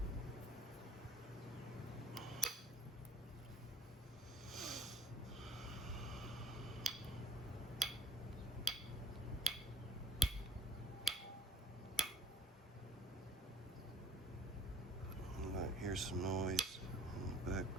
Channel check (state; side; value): normal; both; correlation 0.52